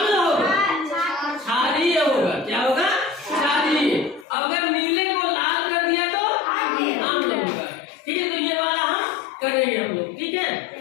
होगा, क्षारीय होगा। क्या होगा? क्षारीय। अगर नीले को लाल कर दिया तो अम्ल होगा, ठीक है। तो ये वाला हम करेंगे हम लोग, ठीक है।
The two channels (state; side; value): drops out; right; at 4.2 s